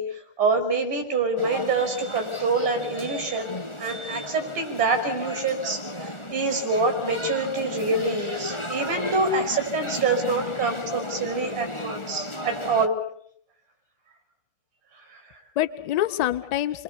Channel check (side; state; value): right; late; 1.4 ms